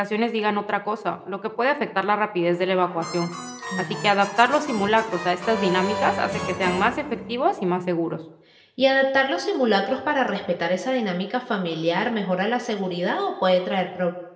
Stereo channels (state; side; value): identical; both; correlation 1.00